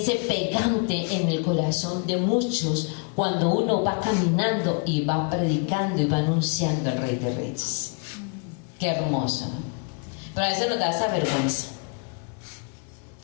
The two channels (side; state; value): right; quieter; 37.9 dB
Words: pegante en el corazón de muchos cuando uno va caminando y va predicando y va anunciando al Rey de Reyes. Qué hermoso, ¿no? Pero a veces nos da esa vergüenza.